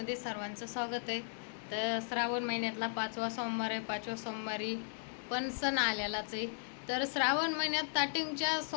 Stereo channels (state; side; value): silent; right; digital silence